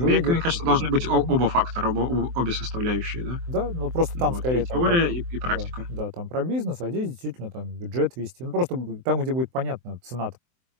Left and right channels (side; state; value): left; late; 24 ms